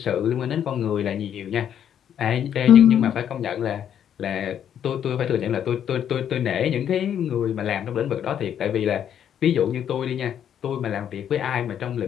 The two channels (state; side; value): quieter; right; 9.3 dB